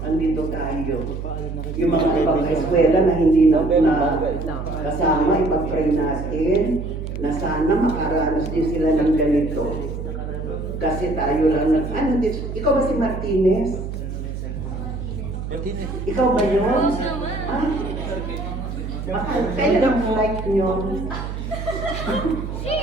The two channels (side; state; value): right; noise; hum, 6 dB below the sound